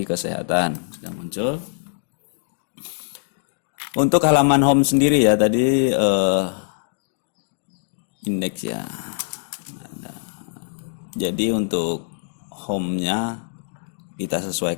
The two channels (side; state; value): right; silent; digital silence